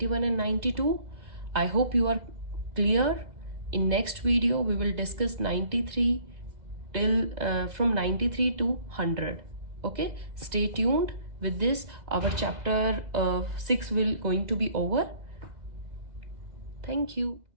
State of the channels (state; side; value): late; left; 2.0 ms